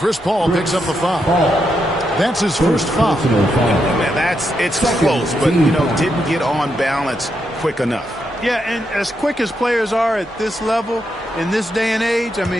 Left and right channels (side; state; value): both; normal; correlation 0.82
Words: Paul picks up the foul. That's his first foul. Man, it's close, but, didn't get on balance quick enough. Yeah, and as quick as players are at this level, in this day and age, I